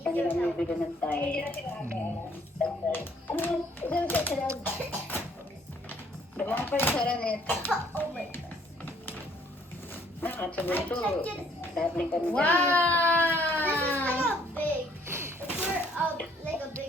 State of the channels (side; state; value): both; normal; correlation 0.63